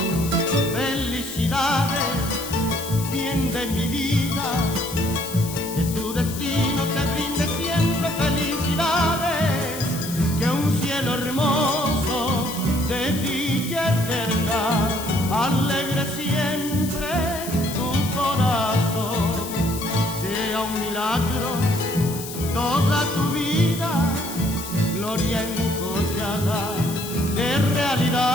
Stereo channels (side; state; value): left; noise; hiss, 10 dB below the sound